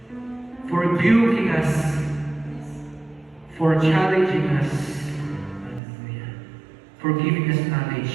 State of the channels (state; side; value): drops out; left; at 5.8 s